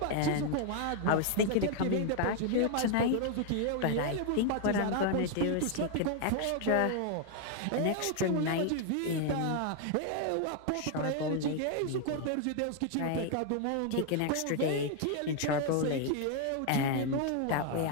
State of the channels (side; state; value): both; different; correlation 0.00